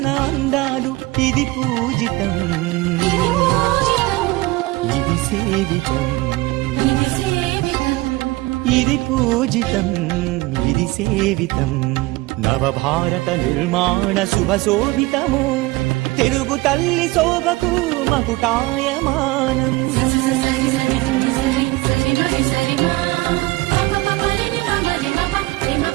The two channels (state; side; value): quieter; left; 20.8 dB